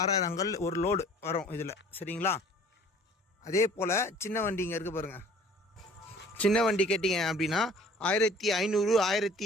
கல் ஒரு லோடு வரும் இதில், சரிங்களா. அதே போல் சின்ன வண்டி இங்கே இருக்குது பாருங்கள். சின்ன வண்டி கேட்டிங்க அப்படின்னா 1500,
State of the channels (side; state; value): both; normal; correlation 0.51